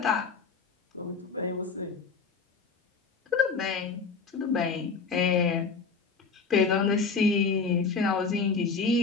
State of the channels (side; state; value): right; quieter; 4.9 dB